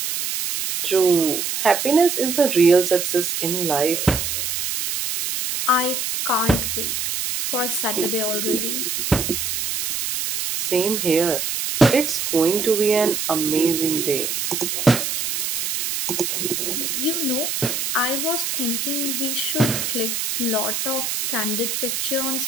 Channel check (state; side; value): noise; right; hiss, 2 dB below the sound